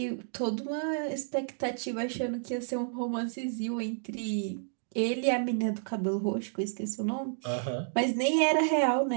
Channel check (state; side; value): silent; left; digital silence